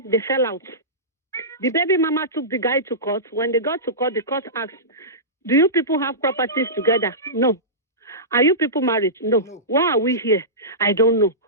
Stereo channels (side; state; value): both; normal; correlation -0.19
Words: they fell out. The baby mama took the guy to court. When they got to court, the court asked, do you people have properties together? No. Are you people married? No. Why are we here? I don't know.